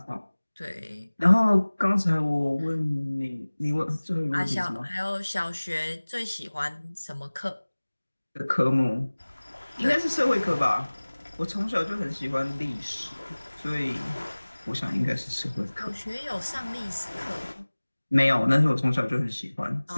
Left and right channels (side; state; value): both; inverted; correlation -1.00